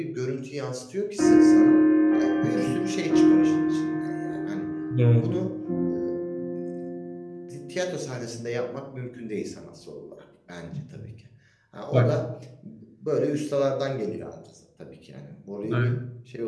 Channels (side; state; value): both; identical; correlation 1.00